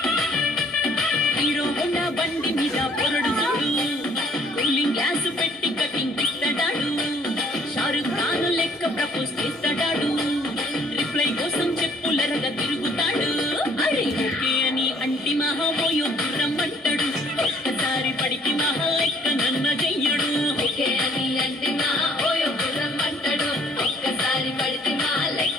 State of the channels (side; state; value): both; normal; correlation 0.60